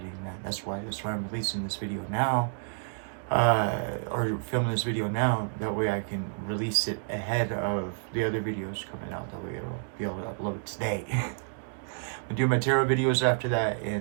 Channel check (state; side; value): silent; left; digital silence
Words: that. That's why I'm releasing this video now, or filming this video now. That way I can release it ahead of the other videos coming out. That way it'll be able to upload today. I'll do my tarot videos after that,